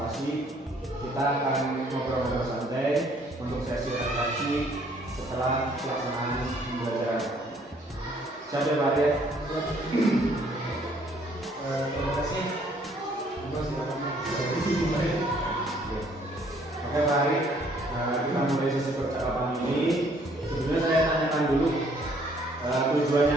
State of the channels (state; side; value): normal; both; correlation 0.63